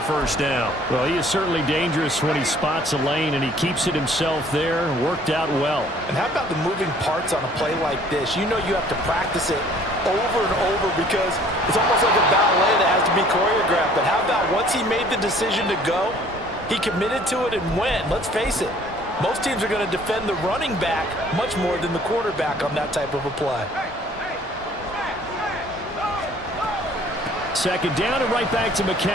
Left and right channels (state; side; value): normal; both; correlation 0.55